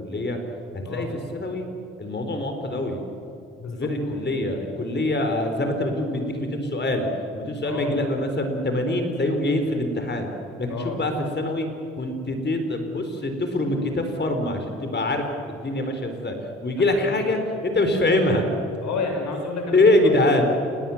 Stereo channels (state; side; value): normal; both; correlation 0.46